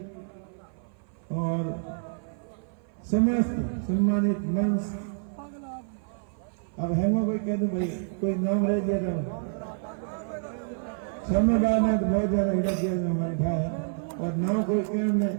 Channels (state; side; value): silent; left; 55 dB below the other